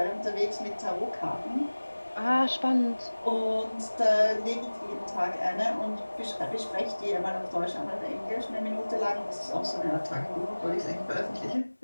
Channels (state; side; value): inverted; both; correlation -1.00